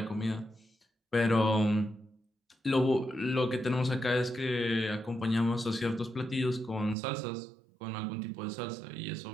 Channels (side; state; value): left; drops out; at 7.0 s